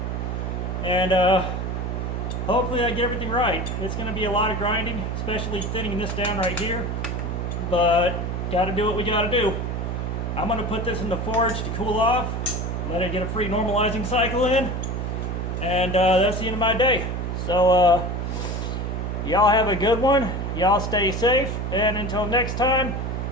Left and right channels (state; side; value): noise; right; hum, 2 dB below the sound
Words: And hopefully I get everything right. It's going to be a lot of grinding, especially thinning this down right here. But got to do what we got to do. I'm going to put this in the forge to cool off, let it get a free normalizing cycle in, and that's the end of my day. So y'all have a good one. Y'all stay safe, and until next time,